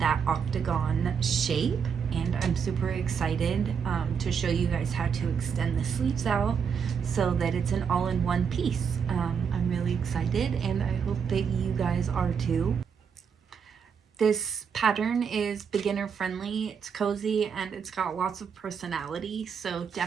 octagon shape, and I'm super excited to show you guys how to extend the sleeves out so that it's an all-in-one piece. I'm really excited, and I hope that you guys are too. This pattern is beginner friendly, it's cozy, and it's got lots of personality, so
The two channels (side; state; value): left; quieter; 6.8 dB